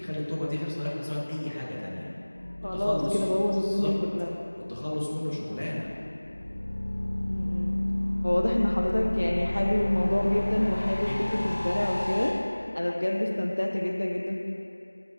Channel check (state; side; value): inverted; both; correlation -1.00